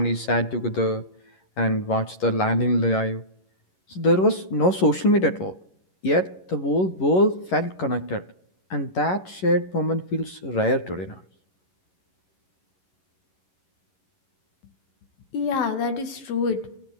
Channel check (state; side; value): late; right; 11 ms